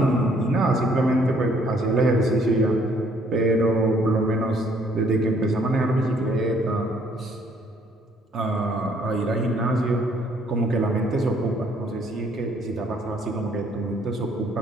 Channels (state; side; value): normal; both; correlation 0.64